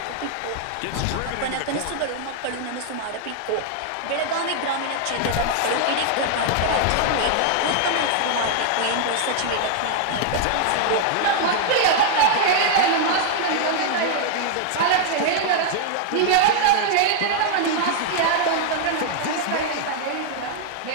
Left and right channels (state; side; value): different; both; correlation 0.00